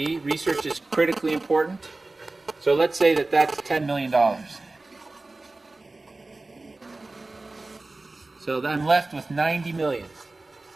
Research is critically important. So let's say that that's $10 million. So I'm left with 90 million.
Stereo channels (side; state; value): left; quieter; 3.2 dB